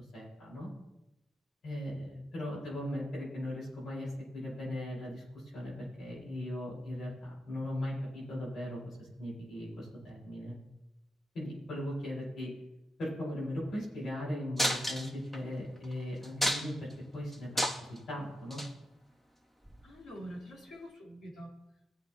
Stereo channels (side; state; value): both; normal; correlation 0.86